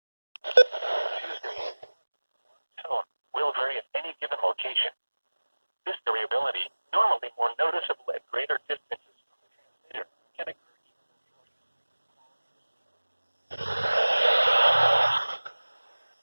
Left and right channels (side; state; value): both; inverted; correlation -1.00